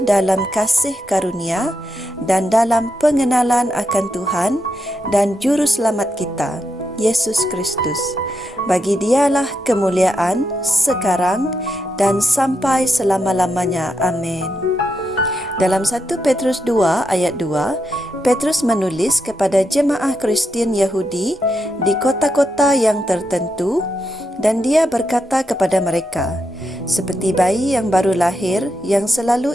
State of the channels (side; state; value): both; normal; correlation 0.83